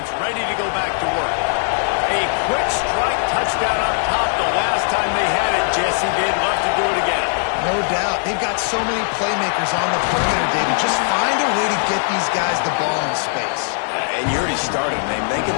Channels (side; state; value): right; silent; digital silence